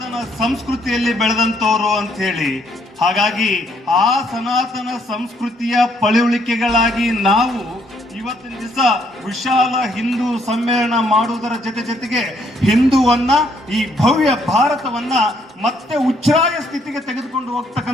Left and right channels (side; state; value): both; normal; correlation 0.69